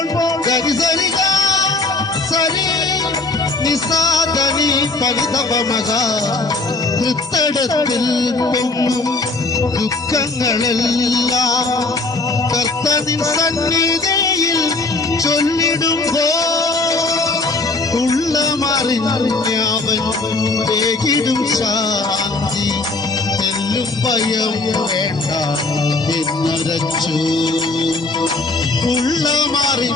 ഗരിസരിക സരി നിസാദനി പരിതപമക കൃത്തടത്തിൽ പൊങ്ങും ദുഃഖങ്ങളെല്ലാം കർത്തനിൻ സന്നിധിയിൽ ചൊല്ലിടുമ്പോൾ ഉള്ളമറിഞ്ഞവൻ വേഗിടും ശാന്തി തെല്ലും ഭയം വേണ്ട എന്നുരച്ചു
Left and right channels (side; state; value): right; quieter; 3.3 dB